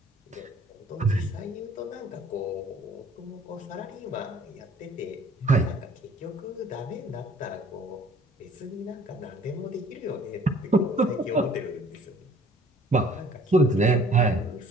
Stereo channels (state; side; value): normal; both; correlation 0.55